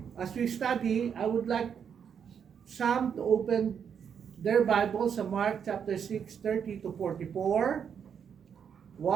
as we study, I would like some to open their Bible sa Mark chapter 6, 30 to 44.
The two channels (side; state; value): left; quieter; 7.5 dB